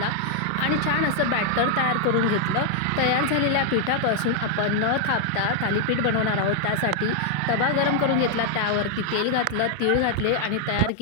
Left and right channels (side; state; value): both; different; correlation 0.00